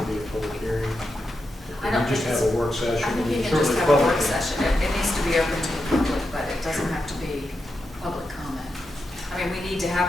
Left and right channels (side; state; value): both; normal; correlation 0.87